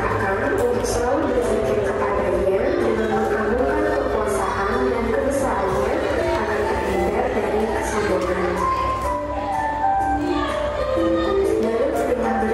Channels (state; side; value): identical; both; correlation 1.00